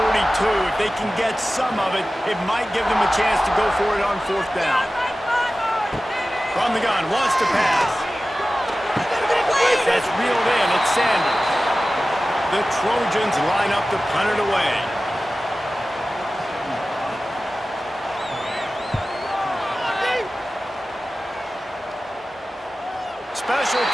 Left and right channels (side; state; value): both; normal; correlation 0.96